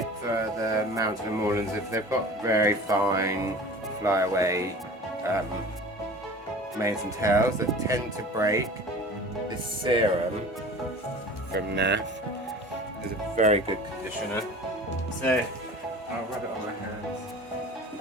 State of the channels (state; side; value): normal; both; correlation 0.40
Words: for the Mountain Moorlands, if they've got very fine flyaway manes and tails that tend to break, this serum from NAF is a very good conditioner. So I'll rub it on my hands